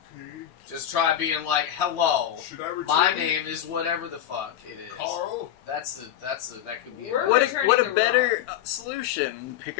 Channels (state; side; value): quieter; right; 11.3 dB